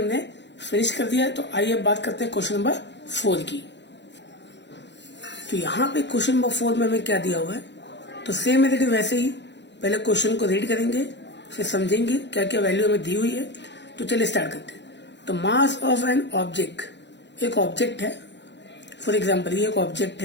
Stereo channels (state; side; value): late; right; 0.52 ms